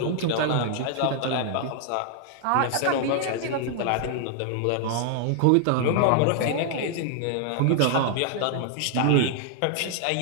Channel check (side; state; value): both; different; correlation 0.00